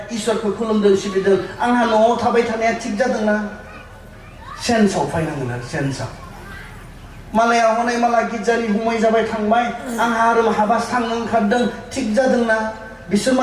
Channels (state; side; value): identical; both; correlation 1.00